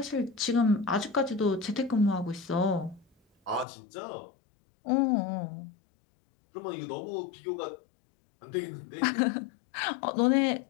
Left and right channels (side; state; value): right; drops out; at 3.7 s